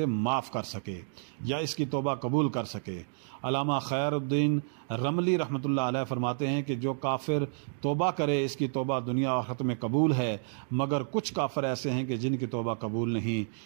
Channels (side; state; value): left; silent; digital silence